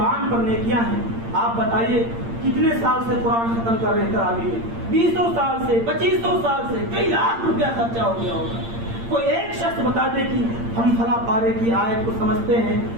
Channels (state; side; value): late; left; 8.7 ms